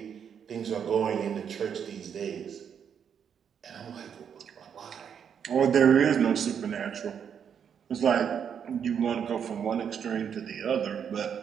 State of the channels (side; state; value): left; quieter; 7.8 dB